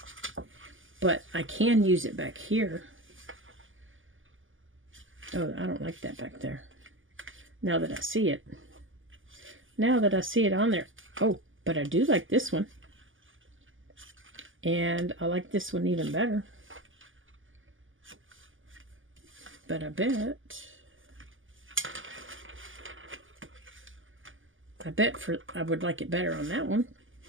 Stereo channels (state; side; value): late; left; 0.58 ms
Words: but I can use it back here. Oh, I don't like that back there. Now that I see it. Now that I see it on there. Oh, but I do like this one. And I like this one even better. But I bet I would like it better on that one.